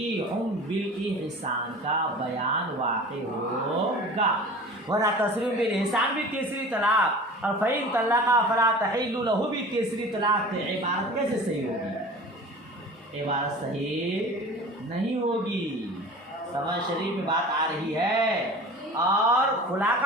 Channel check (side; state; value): both; normal; correlation 0.39